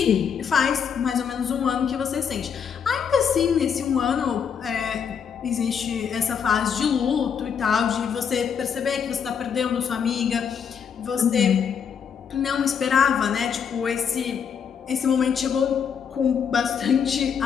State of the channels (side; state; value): right; quieter; 7.1 dB